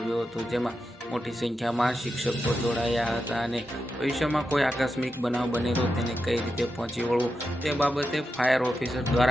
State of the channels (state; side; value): normal; both; correlation 0.88